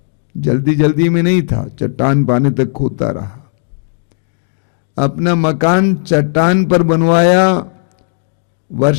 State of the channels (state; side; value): silent; right; digital silence